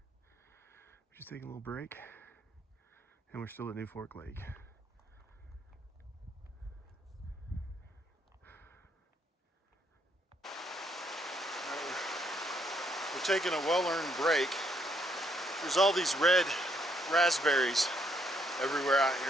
just taking a little break, and we're still at New Fork Lake. We're taking a well-earned break. There's all these red raspberries everywhere out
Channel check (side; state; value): both; normal; correlation 0.72